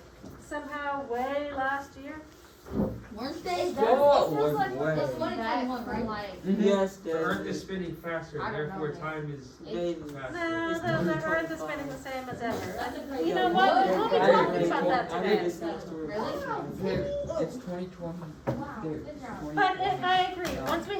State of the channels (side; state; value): both; identical; correlation 1.00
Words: somehow way last year? Weren't they? Oh, It feels like way. it's 2021, right? Like, Yes, The Earth is spinning faster, I don't therefore know, time is faster. No, the Earth is spinning the same as ever. that's a crazy. You know what? We'll be talking about that I today. read this next story. Really? It's 2020. Wow, good job. But I agree, once we